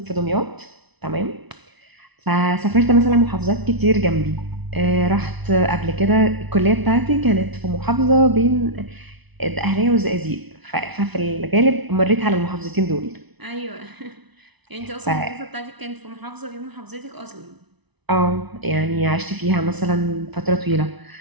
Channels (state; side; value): late; left; 1.0 ms